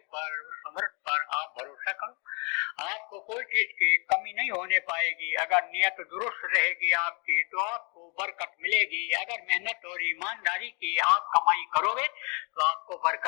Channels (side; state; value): right; quieter; 34.2 dB